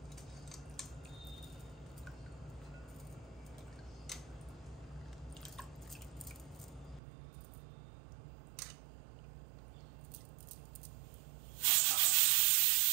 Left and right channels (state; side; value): drops out; left; at 7.0 s